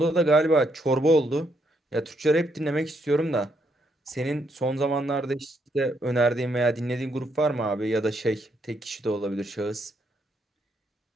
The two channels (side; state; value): both; normal; correlation 0.75